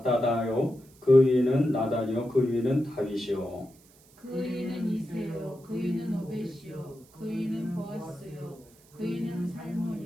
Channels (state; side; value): noise; right; hiss, 28 dB below the sound